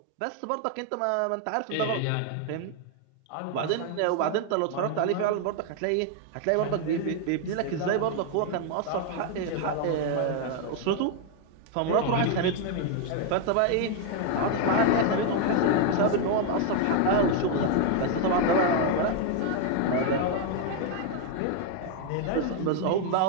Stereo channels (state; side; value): different; both; correlation 0.00